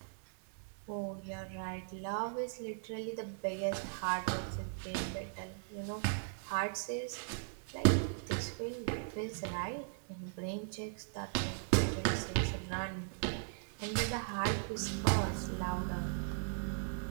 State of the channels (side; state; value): left; silent; 52 dB below the other